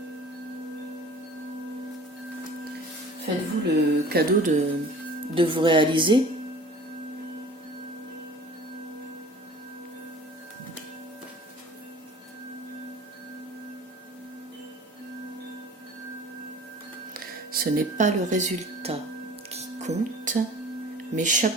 Faites-vous le cadeau de vous réaliser. Ce n'est pas le résultat qui compte, mais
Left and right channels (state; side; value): normal; both; correlation 0.45